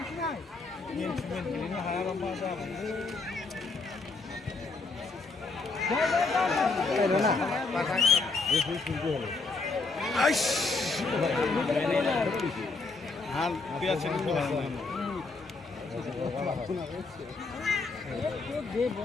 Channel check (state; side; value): quieter; right; 3.8 dB